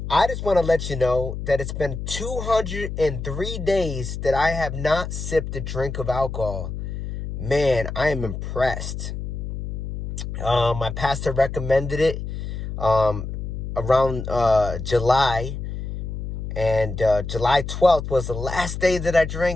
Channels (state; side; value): noise; left; hum, 6 dB below the sound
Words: I just want to let you know that it's been 203 days that I have not sipped a drink of alcohol. Man, I am impressed. My pastor recommended it around July. And July 12th was the last day that I